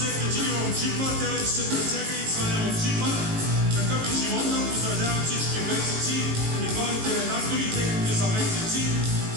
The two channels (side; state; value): left; late; 18 ms